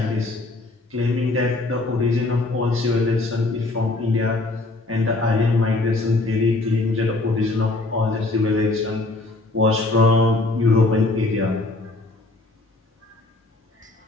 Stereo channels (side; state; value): right; quieter; 3.1 dB